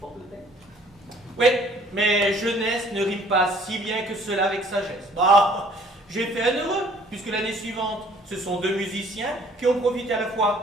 tête. Oui, mais jeunesse ne rime pas si bien que cela avec sagesse. Bah, j'ai fait un heureux, puisque l'année suivante, ce sont 2 musiciens qui ont profité à la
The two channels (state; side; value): normal; both; correlation 0.57